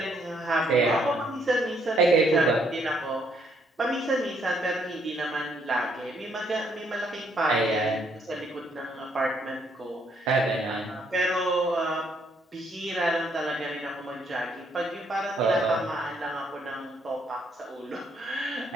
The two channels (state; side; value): normal; both; correlation 0.70